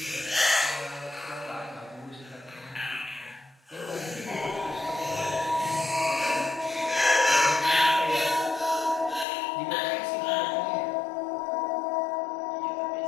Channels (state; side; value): drops out; right; at 9.2 s